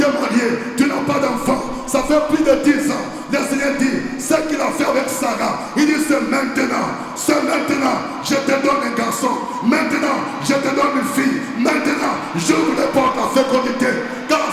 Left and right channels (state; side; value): identical; both; correlation 1.00